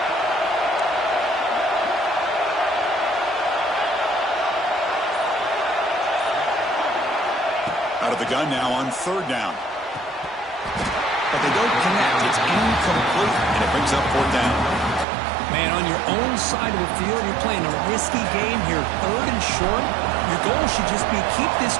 Out of the gun now on 3rd down. But they don't connect. It's incomplete, and it brings up 4th down. Man, on your own side of the field, you're playing a risky game here. 3rd and short. Your goal should just be keep this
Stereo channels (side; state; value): left; drops out; at 15.1 s